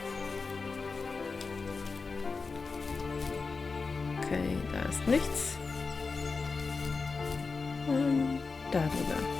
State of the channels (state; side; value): quieter; right; 4.4 dB